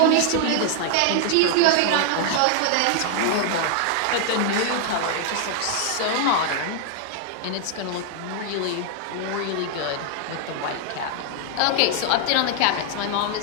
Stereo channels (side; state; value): both; different; correlation 0.00